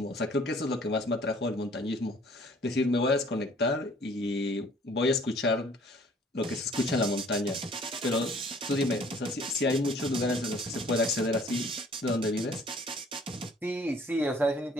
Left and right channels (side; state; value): both; normal; correlation 0.56